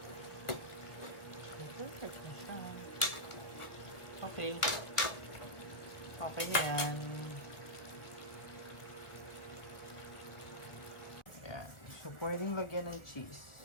Perfect na siya. Okay. Okay na yan. Ayan. So, pwedeng lagyan ng cheese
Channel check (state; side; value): late; right; 1.2 ms